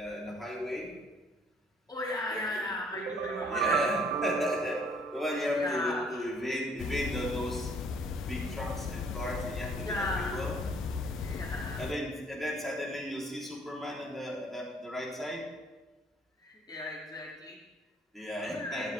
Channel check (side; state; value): both; normal; correlation 0.60